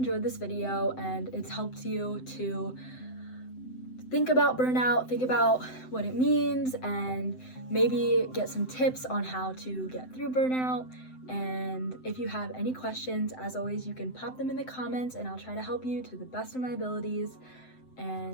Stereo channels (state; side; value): late; right; 7.8 ms